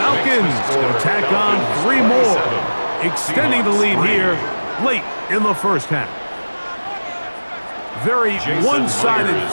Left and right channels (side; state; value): both; inverted; correlation -1.00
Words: going to tack on 3 more, extending the lead here late in the 1st half. Very one-sided